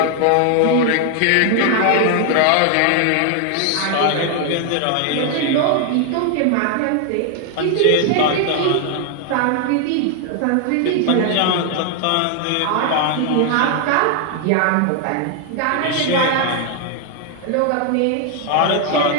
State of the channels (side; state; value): both; different; correlation 0.00